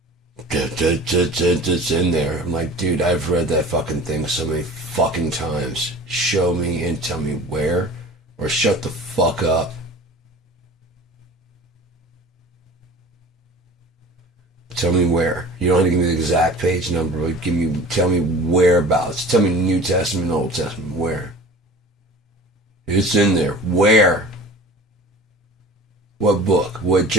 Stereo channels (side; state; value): both; normal; correlation 0.41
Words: It's in there. I'm like, dude, I've read that fucking thing so many fucking times. Show me and tell me where, or shut the fuck up. Tell me where. You don't have to give me the exact page number, but tell me whereabouts. Tell me New Testament, Old Testament, where? It's in there. Where? What book? What